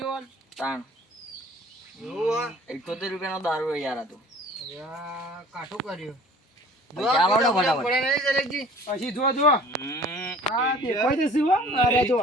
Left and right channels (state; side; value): normal; both; correlation 0.49